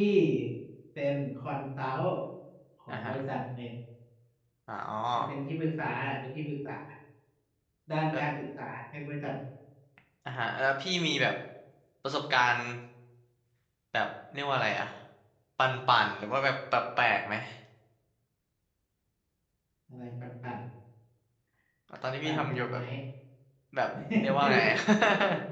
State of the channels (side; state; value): both; identical; correlation 1.00